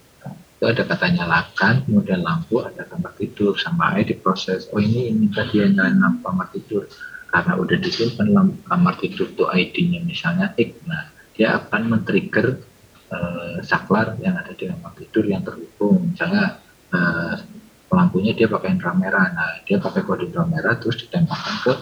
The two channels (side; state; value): both; identical; correlation 1.00